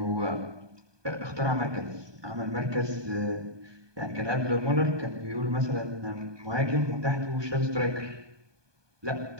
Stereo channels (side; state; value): left; late; 1.2 ms